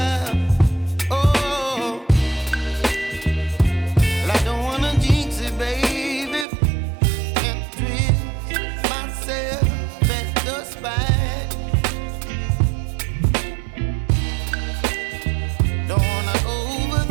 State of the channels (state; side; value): drops out; left; at 6.5 s